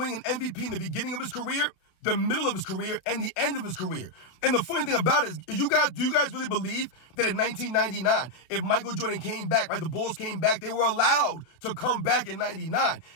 an MVP in the beginning of his career the middle of his career and the end of his career. And the funny thing about it is do you guys really believe that in 1999, if Michael Jordan came back, right, the Bulls came back, they were allowed to come back in 99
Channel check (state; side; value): late; right; 32 ms